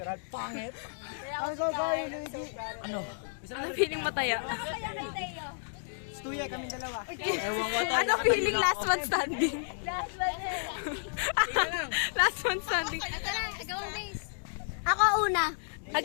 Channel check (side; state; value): right; silent; digital silence